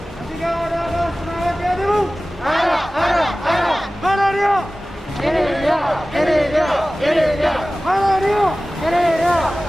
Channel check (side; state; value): both; normal; correlation 0.97